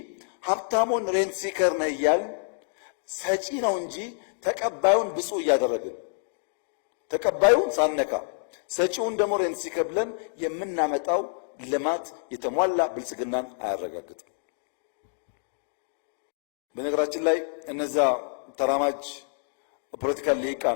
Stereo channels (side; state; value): right; silent; digital silence